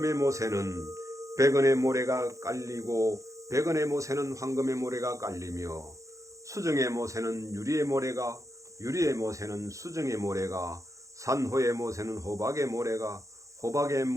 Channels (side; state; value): left; late; 0.15 ms